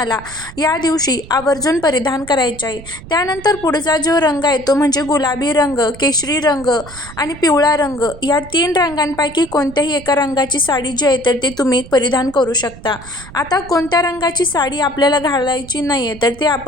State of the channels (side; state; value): right; noise; rumble, 17 dB below the sound